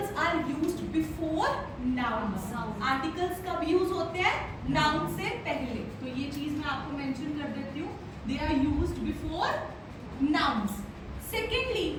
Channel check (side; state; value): both; identical; correlation 1.00